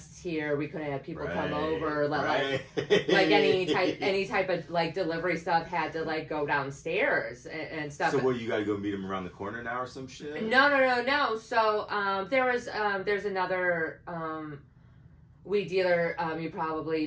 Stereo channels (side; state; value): both; identical; correlation 1.00